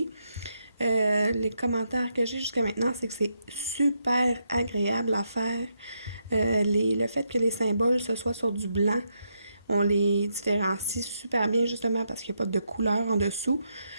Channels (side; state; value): both; inverted; correlation -0.81